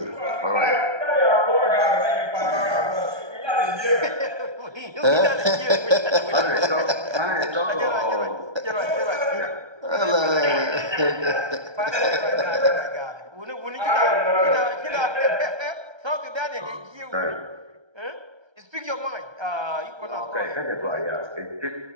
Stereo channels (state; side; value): late; left; 1.3 ms